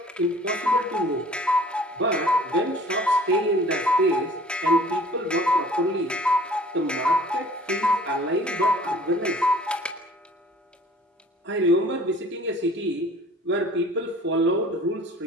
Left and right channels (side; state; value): both; normal; correlation 0.50